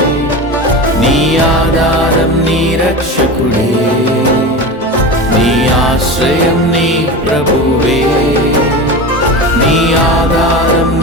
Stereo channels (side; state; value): both; normal; correlation 0.27